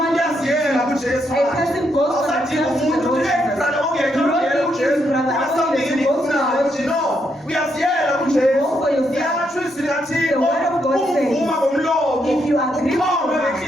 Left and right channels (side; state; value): both; normal; correlation 0.78